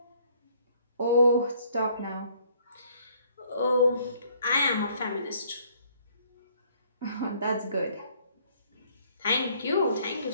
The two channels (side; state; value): both; inverted; correlation -0.62